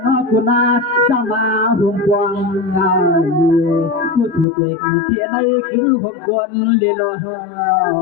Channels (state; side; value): drops out; right; at 4.5 s